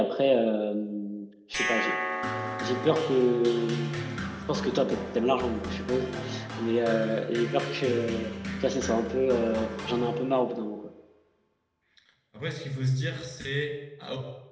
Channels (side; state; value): both; identical; correlation 1.00